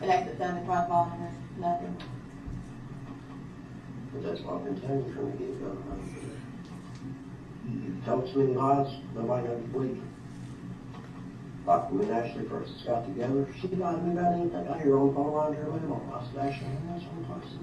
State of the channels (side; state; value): both; identical; correlation 1.00